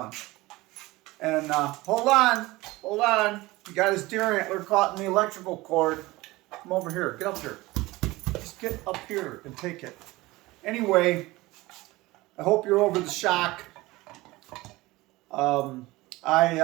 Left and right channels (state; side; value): quieter; left; 20.2 dB